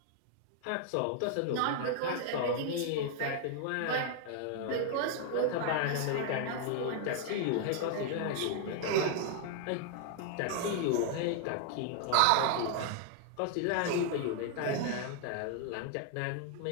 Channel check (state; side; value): different; both; correlation 0.00